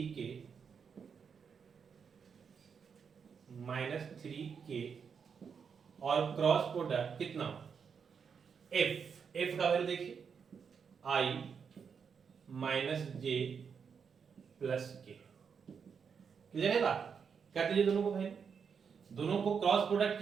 और क्रॉस प्रोडक्ट कितना, एफ का वैल्यू देखिए i माइनस जे प्लस के। क्लियर है बात। कर दीजिए दोनों को वैल्यू, दोनों को क्रॉस प्रोडक्ट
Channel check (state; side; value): quieter; left; 6.5 dB